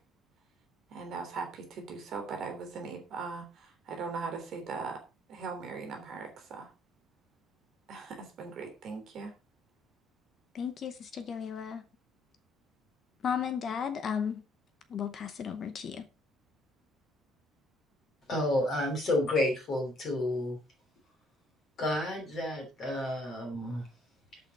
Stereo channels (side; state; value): both; normal; correlation 0.65